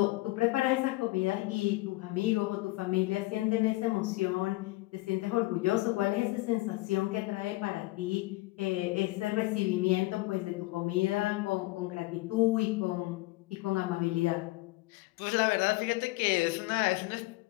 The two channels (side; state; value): right; quieter; 20.8 dB